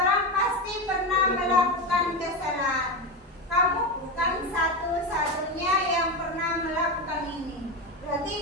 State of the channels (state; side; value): normal; both; correlation 0.16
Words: pasti pernah melakukan kesalahan. Kamu bukan satu-satunya yang pernah melakukan ini. Berarti